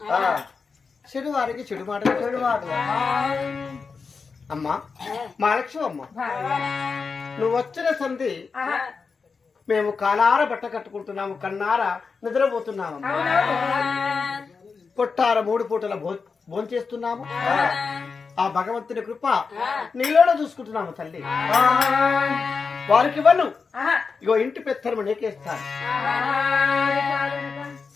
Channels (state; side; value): quieter; right; 5.0 dB